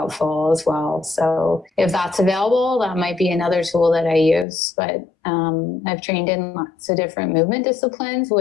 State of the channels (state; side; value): drops out; right; at 4.5 s